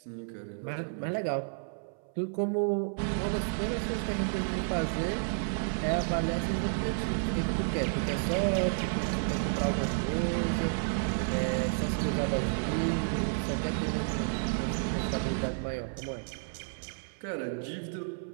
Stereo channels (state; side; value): silent; left; 57 dB below the other